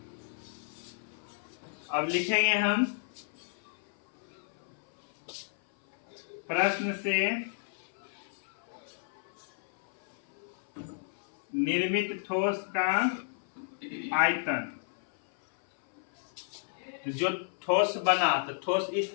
अब लिखेंगे हम प्रश्न से निर्मित ठोस का आयतन। तो जो ठोस बना, तो ठोस इस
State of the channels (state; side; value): silent; right; 56 dB below the other